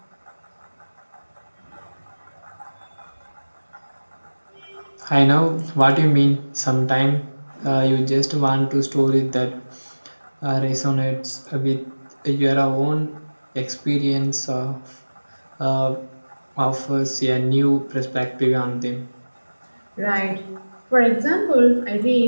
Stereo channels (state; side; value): inverted; both; correlation -1.00